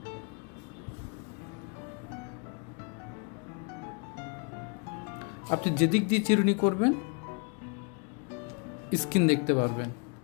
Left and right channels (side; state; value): right; quieter; 35.9 dB